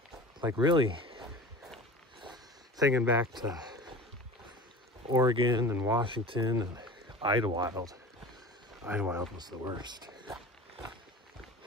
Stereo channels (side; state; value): both; normal; correlation 0.36